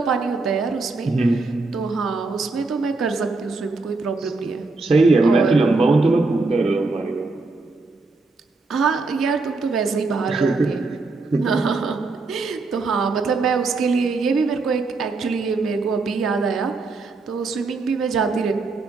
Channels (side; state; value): left; quieter; 3.7 dB